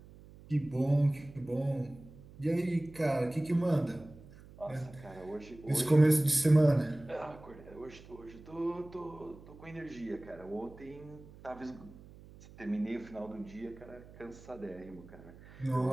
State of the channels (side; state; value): right; noise; hum, 20 dB below the sound